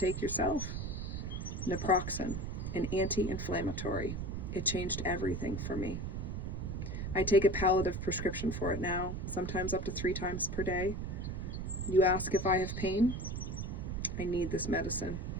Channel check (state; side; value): noise; right; rumble, 4 dB below the sound